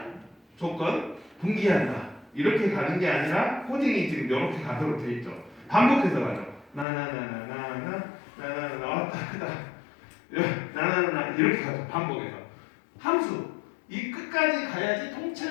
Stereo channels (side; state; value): right; drops out; at 6.9 s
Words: 조건 분기한다. 이렇게 가는 게 아니라 코딩이 지금 이렇게 가도록 돼 있죠. 반복해서 가죠. 나나나나나나 나나나 왔다 갔다 이렇게 가죠. 반복해서. 함수. 이 끝까지 가야지